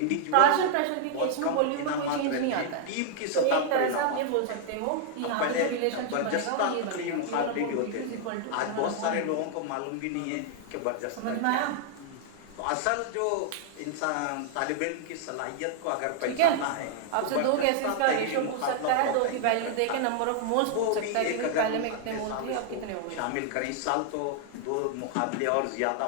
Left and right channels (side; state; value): both; different; correlation 0.00